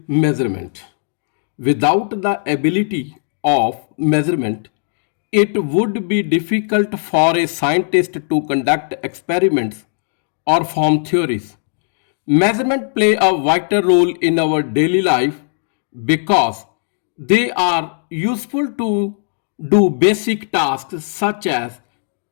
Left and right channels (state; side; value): silent; right; digital silence